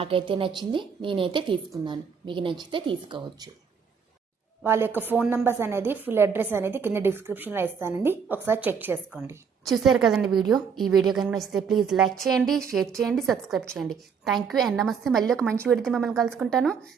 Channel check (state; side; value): quieter; left; 6.3 dB